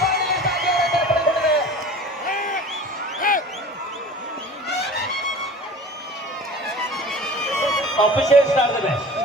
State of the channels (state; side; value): normal; both; correlation 0.40